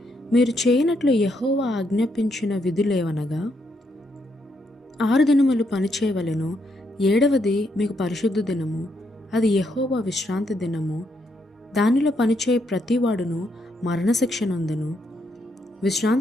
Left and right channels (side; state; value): both; normal; correlation 0.77